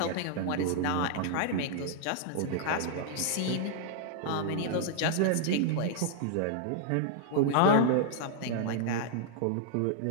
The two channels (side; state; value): both; different; correlation 0.00